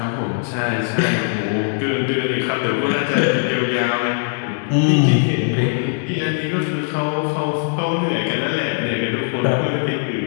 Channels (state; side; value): silent; right; digital silence